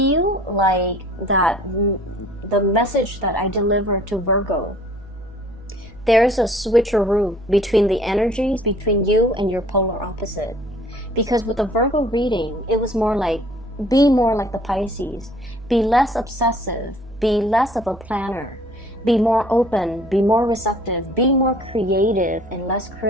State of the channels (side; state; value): right; noise; hum, 21 dB below the sound